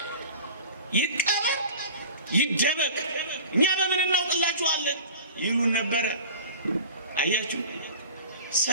ይቀበር ይደበቅ፣ እኛ በምን እናውቅላችኋለን ይሉን ነበረ። አያችሁ፣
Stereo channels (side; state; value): both; inverted; correlation -0.39